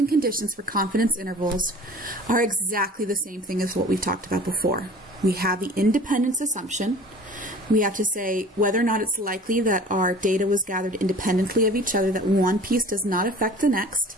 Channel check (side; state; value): both; normal; correlation 0.44